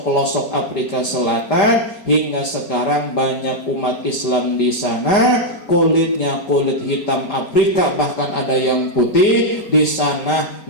Afrika Selatan, hingga sekarang banyak umat Islam di sana. Kulitnya kulit hitam Afrika, bahkan ada yang putih. Di sana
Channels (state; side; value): late; right; 5.1 ms